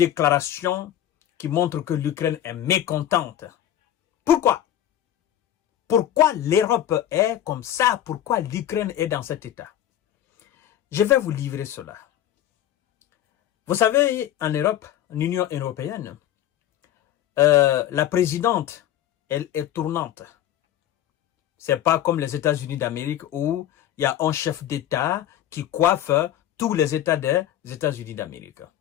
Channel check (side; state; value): right; quieter; 11.7 dB